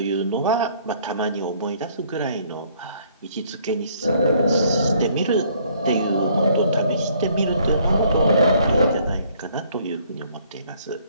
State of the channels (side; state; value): both; inverted; correlation -0.62